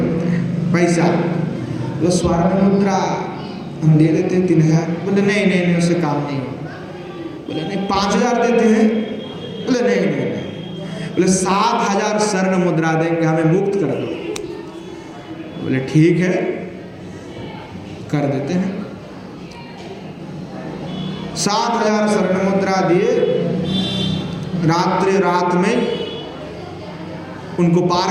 हैं पैसा। तो स्वर्ण मुद्रा हम दे देते हैं 3000। बोले नहीं नहीं नहीं, उससे काम नहीं होगा। बोले नहीं 5000 देते हैं। बोले नहीं नहीं नहीं। बोले 7000 स्वर्ण मुद्रा देंगे, हमें मुक्त कर दो। बोले ठीक है कर देते हैं। 7000 स्वर्ण मुद्रा दिए। रात में उनको पार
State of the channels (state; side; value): identical; both; correlation 1.00